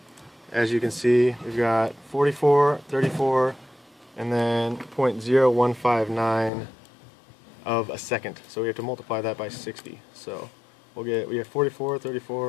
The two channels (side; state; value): right; drops out; at 6.5 s